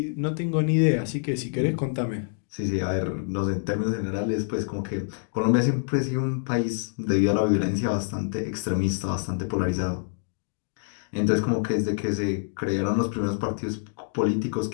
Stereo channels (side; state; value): right; silent; digital silence